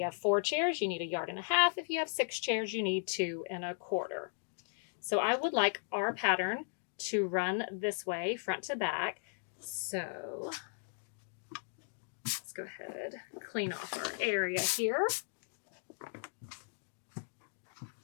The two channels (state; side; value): silent; right; digital silence